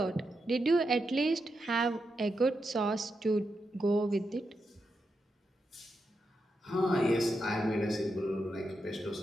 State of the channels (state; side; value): normal; both; correlation 0.86